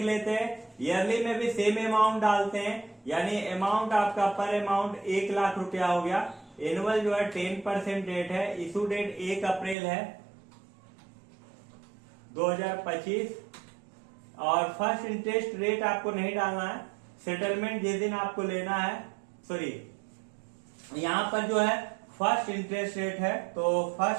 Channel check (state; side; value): drops out; left; at 9.8 s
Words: लेते हैं। ईयरली में भी सेम अमाउंट डालते हैं, यानी अमाउंट आपका पर अमाउंट 1 लाख रुपया हो गया। एनुअल जो है 10% रेट है, इशू डेट 1 अप्रैल है 2025 और फर्स्ट इंटरेस्ट रेट आपको नहीं डालना है। सेटलमेंट जिस दिन आपको लेना है, सॉरी यहाँ पर जो है फर्स्ट इंटरेस्ट रेट है तो